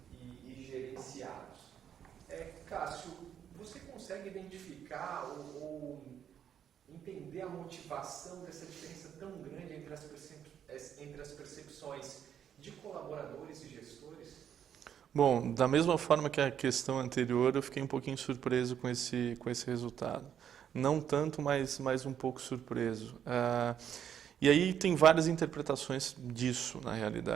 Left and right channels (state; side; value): quieter; left; 9.1 dB